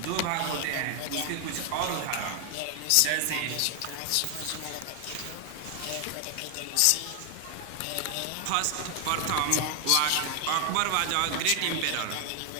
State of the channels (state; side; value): different; both; correlation 0.00